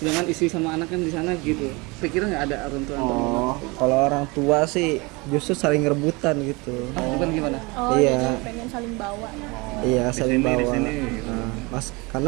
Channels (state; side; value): quieter; left; 26.0 dB